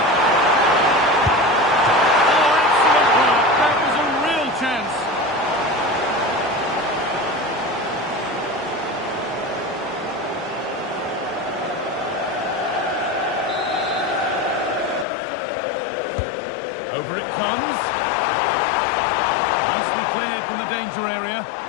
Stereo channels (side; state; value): right; drops out; at 15.1 s